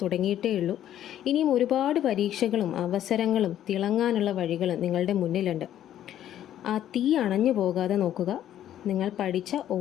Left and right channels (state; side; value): quieter; right; 11.4 dB